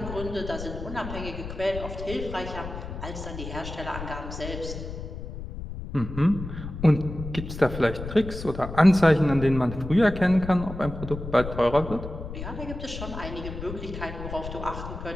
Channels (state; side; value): noise; left; rumble, 9 dB below the sound